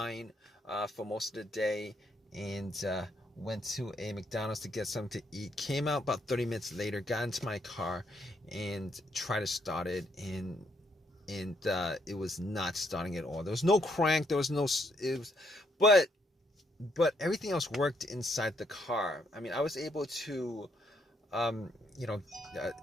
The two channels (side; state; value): both; normal; correlation 0.73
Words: for most of the day, and went to a McDonald's to get something to eat. Came out about 30 minutes later, got into my car and tried to start it, and it was not starting at all. There was no crank, there was no it was, but everything else worked inside the car. I mean, I was able to um, you know,